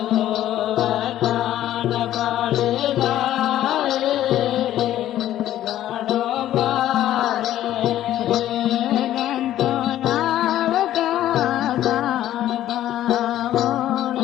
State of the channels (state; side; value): quieter; right; 12.7 dB